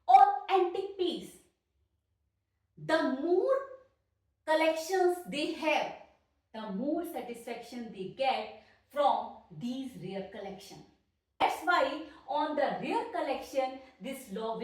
or antique piece. The more collections they have, the more satisfaction they get from these rare collection. That's why on the rare collection this law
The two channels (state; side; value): identical; both; correlation 1.00